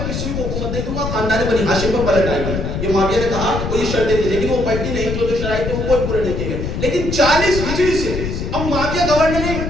کسی کو حکومت نہیں دوں گا, خاندان بنی ہاشم پر پلٹ آئے گی. یہ معاویہ نے کہا, وہ یہ شرطیں تھی لیکن وہ پلٹی نہیں, جو شرائط تھے وہ کوئی پورے نہیں کیے گئے. لیکن 40 ہجری سے اب معاویہ گورنر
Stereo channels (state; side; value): noise; left; rumble, 4 dB below the sound